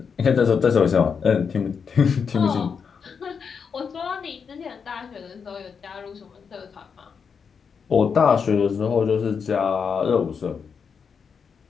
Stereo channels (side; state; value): right; quieter; 6.2 dB